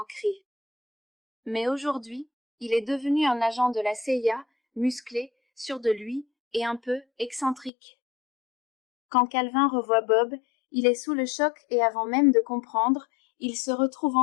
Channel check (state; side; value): drops out; right; at 7.7 s